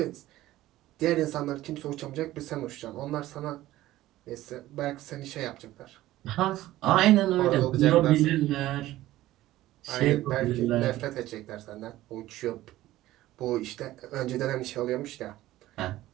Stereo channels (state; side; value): quieter; left; 15.6 dB